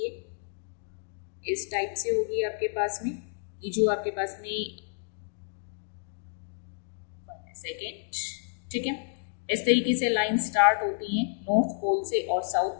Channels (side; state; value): right; silent; digital silence